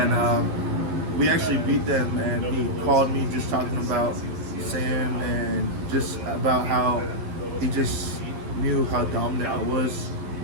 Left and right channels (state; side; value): late; left; 11 ms